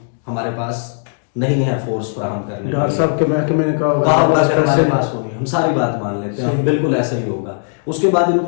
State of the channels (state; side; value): silent; right; digital silence